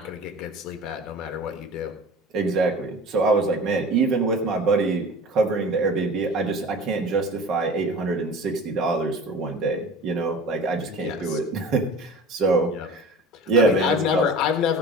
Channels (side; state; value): both; normal; correlation 0.39